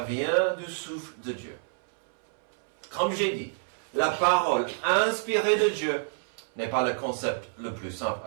du souffle de Dieu. Comme j'ai dit, la parole inspirée de Dieu n'est pas le concept le plus simple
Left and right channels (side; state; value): left; silent; 59 dB below the other